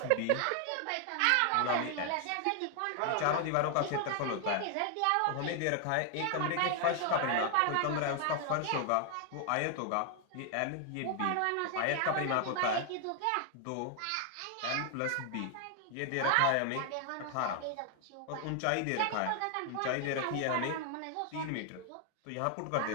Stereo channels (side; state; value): both; different; correlation 0.00